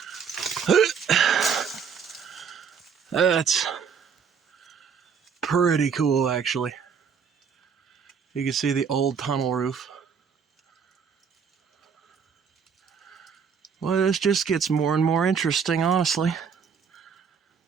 That's pretty cool, actually. You can see the old tunnel roof. Well, this just gets more and more interesting, honestly.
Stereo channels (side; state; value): left; quieter; 6.5 dB